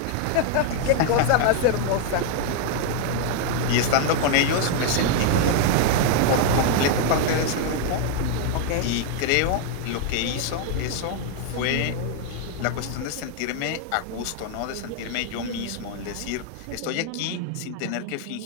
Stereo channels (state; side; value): different; both; correlation 0.00